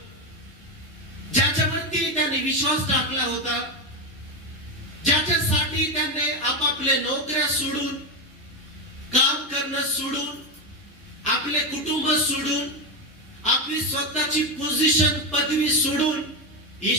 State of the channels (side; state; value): both; normal; correlation 0.12